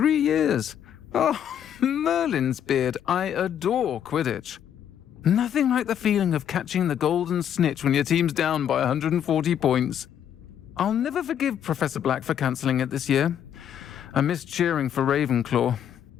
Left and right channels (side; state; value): right; quieter; 9.4 dB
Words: years. Oh, Merlin's beard. I adore Quidditch. Nothing like the feeling of catching the golden snitch when your team's down by 140 points. I'll never forgive Professor Black for cancelling it this year. I missed cheering for Ravenclaw.